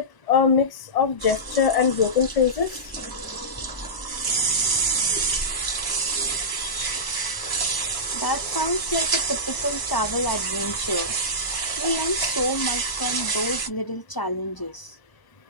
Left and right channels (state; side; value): late; right; 1.0 ms